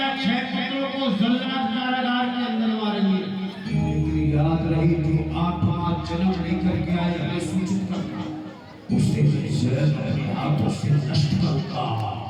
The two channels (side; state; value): both; identical; correlation 1.00